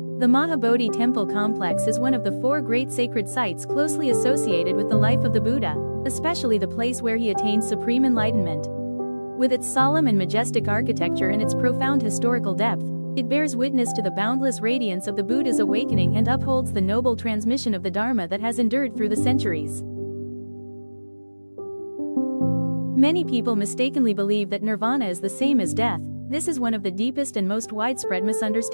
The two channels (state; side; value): inverted; both; correlation -1.00